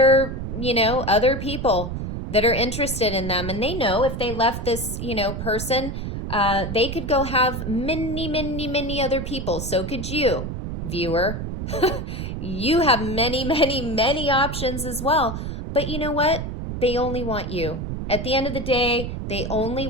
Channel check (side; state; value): right; noise; rumble, 5 dB below the sound